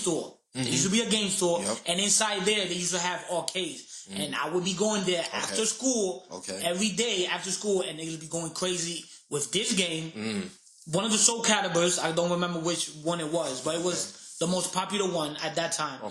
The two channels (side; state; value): both; identical; correlation 1.00